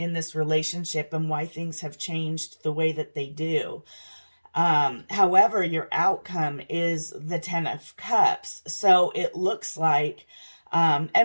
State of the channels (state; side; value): inverted; both; correlation -1.00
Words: this relationship and why things have changed the way that they do. However, your outcome is the 10 of Cups. So it looks like,